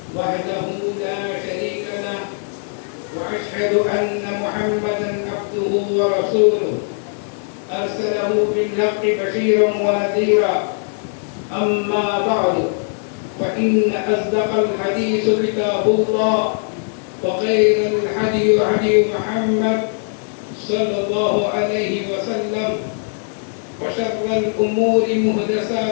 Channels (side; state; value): right; silent; 60 dB below the other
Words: وحده لا شريك له وأشهد أن محمدا عبده ورسوله أرسله بالحق بشيرا ونذيرا أما بعد فإن أصدق الحديث كتاب الله وخير الهدي هدي محمد صلى الله عليه وسلم وشر الأمور